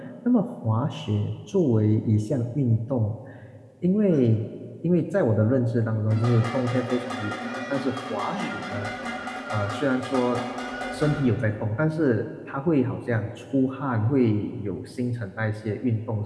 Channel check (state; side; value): identical; both; correlation 1.00